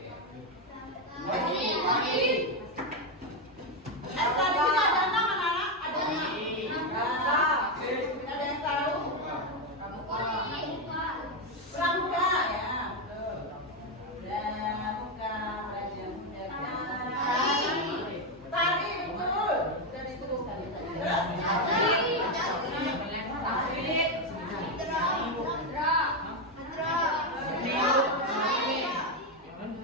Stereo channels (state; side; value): normal; both; correlation 0.06